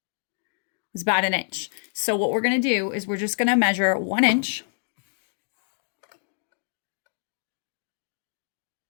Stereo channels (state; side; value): silent; right; digital silence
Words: was about 1 inch. So what we're going to do is we're just going to measure 1 inch.